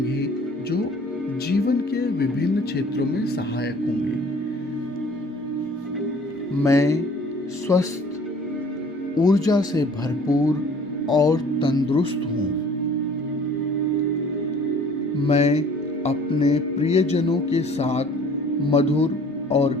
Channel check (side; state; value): both; normal; correlation 0.52